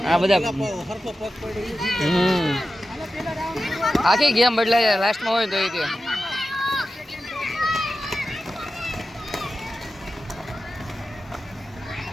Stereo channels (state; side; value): normal; both; correlation 0.92